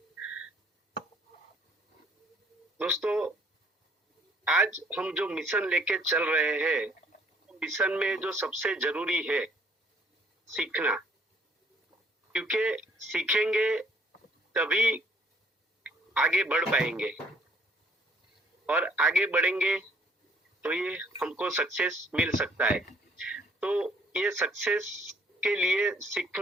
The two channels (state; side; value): normal; both; correlation 0.62